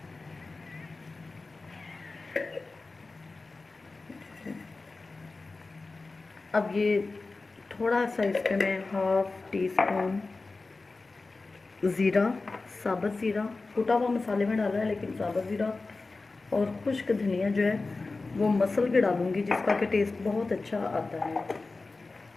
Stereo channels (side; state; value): right; quieter; 3.6 dB